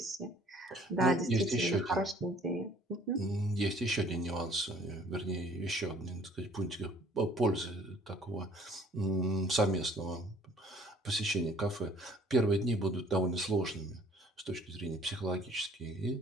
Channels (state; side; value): normal; both; correlation 0.56